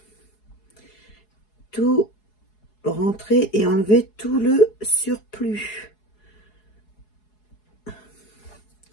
tout rentrer et enlever tout le surplus.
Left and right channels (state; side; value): late; right; 4.7 ms